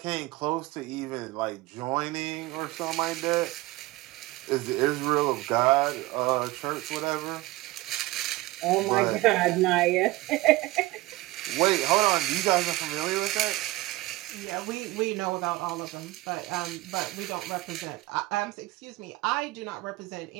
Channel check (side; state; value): left; quieter; 19.4 dB